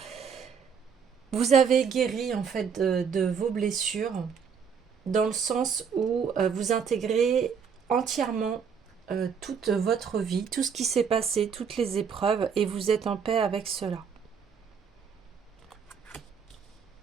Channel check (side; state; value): left; quieter; 6.6 dB